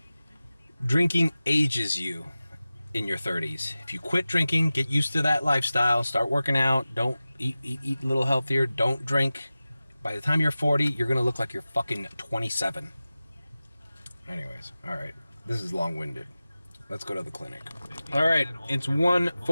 Drinking ages you in your 30s. If you quit drinking, get used to that lifestyle, start working out, don't eat a little healthier, don't drink. By the time you're 40, you're going to look like you're fucking 27. Anyways, all right. This is long-winded. Let's go to the clinic. All right, it's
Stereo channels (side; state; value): both; inverted; correlation -0.96